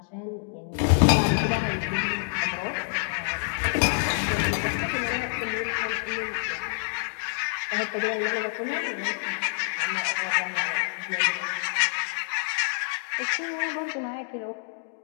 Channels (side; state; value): right; silent; digital silence